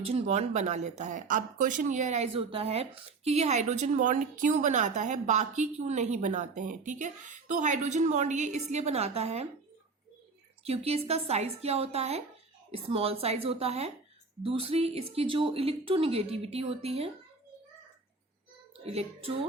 बॉन्ड बना लेता है। अब क्वेश्चन ये अराइज होता है कि ये हाइड्रोजन बॉन्ड क्यों बनाता है, बाकी क्यों नहीं बनाते हैं, ठीक है। तो हाइड्रोजन बॉन्ड ये इसलिए बनाता है क्योंकि इसका साइज क्या होता है? स्मॉल साइज होता है। दूसरी इसकी जो इलेक्ट्रोनिगेटिविटी होती है,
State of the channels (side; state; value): left; quieter; 4.2 dB